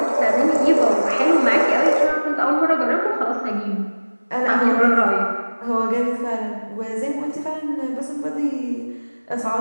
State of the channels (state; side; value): inverted; both; correlation -1.00